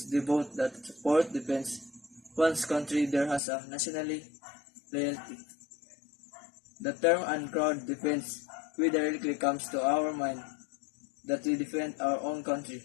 devote, that support, defends one's country. There has a nationally loyalty. The term and crowd defense directly comes to our mind that we defend our own country.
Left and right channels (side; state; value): right; drops out; at 3.4 s